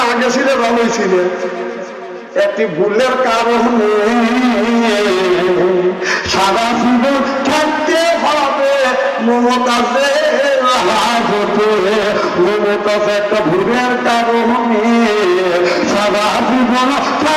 আগে ছিলে ভালোই ছিলে, একটি ভুলের কারণে সারা জীবন থাকতে হবে মমতাজের হাজতে। মমতাজ একটা ভুলের কারণে সারা জীবন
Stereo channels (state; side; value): identical; both; correlation 1.00